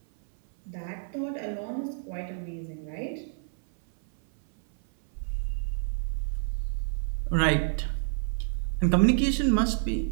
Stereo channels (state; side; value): silent; left; 57 dB below the other